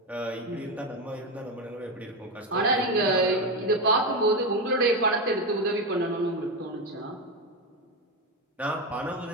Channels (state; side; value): normal; both; correlation 0.13